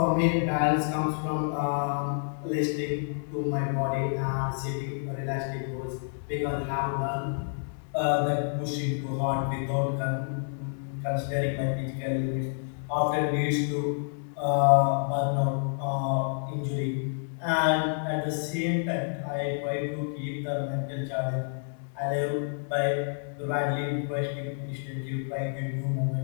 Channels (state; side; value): silent; right; digital silence